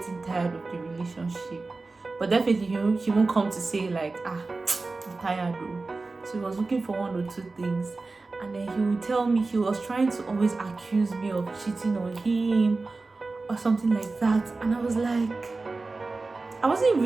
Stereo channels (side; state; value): left; quieter; 3.6 dB